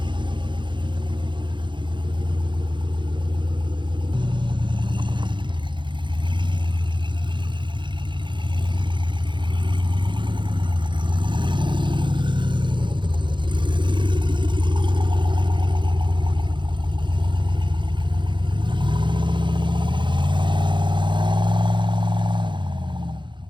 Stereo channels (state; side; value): late; left; 0.23 ms